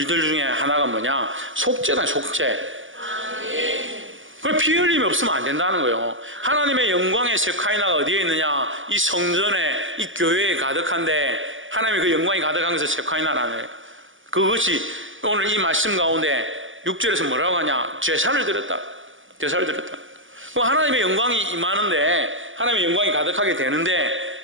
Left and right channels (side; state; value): left; late; 0.57 ms